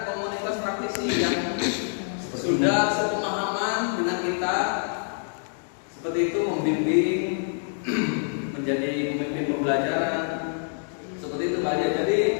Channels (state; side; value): silent; right; digital silence